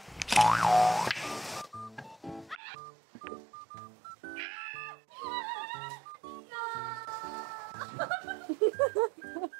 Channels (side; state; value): left; drops out; at 2.6 s